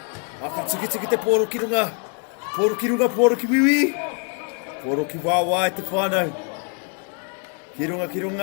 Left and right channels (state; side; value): quieter; right; 37.7 dB